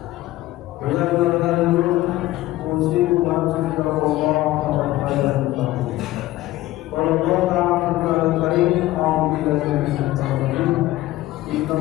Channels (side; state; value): right; quieter; 16.4 dB